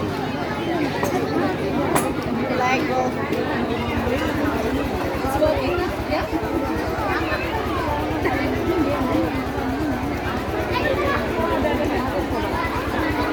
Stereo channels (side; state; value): both; identical; correlation 1.00